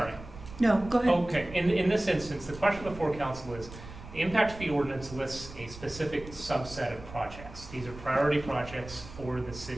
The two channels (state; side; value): noise; right; rumble, 15 dB below the sound